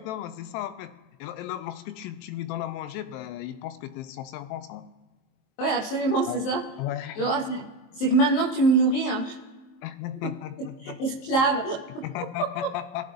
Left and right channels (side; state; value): right; late; 23 ms